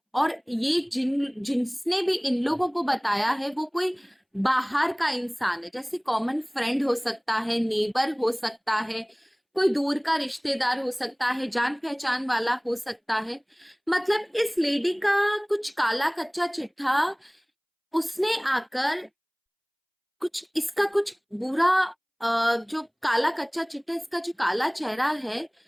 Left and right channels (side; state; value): both; identical; correlation 1.00